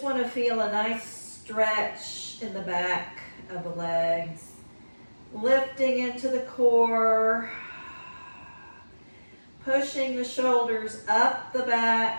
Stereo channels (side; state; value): both; inverted; correlation -1.00